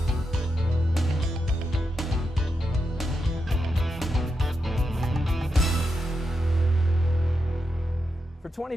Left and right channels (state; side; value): normal; both; correlation 0.86